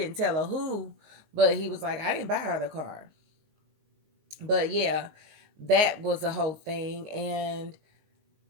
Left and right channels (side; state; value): left; late; 19 ms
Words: tell her who, but he was like, I didn't buy her the car. But yeah, that was a whole thing. And